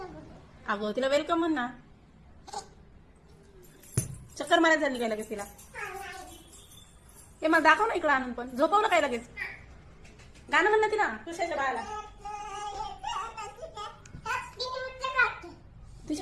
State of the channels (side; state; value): both; identical; correlation 1.00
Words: अगं तिला वेलकम म्हण ना. चक्कर मारायला झाली काय लगेच तिला? हे मला दाखव ना इकडं आणून. पण झोपव ना काय लगेच. गाणं म्हण ना तिला तुझ्याच्या बाळाला. ती